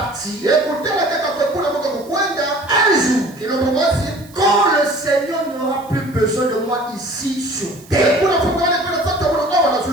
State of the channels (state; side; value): noise; right; hiss, 25 dB below the sound